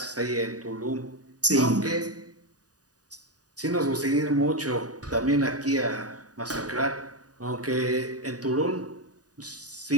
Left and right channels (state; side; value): late; left; 0.68 ms